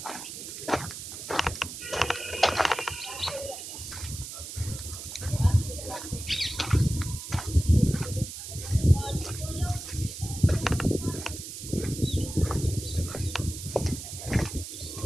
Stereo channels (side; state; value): right; noise; hiss, 9 dB below the sound